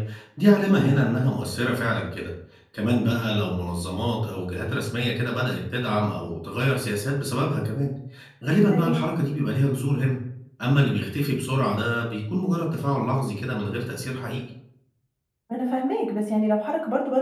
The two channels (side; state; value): both; identical; correlation 1.00